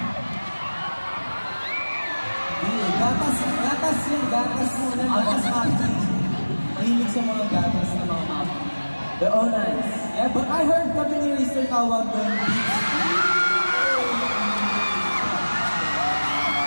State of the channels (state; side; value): inverted; both; correlation -1.00